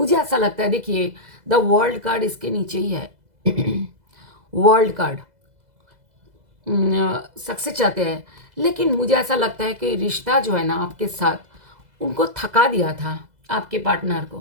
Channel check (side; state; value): left; late; 2.0 ms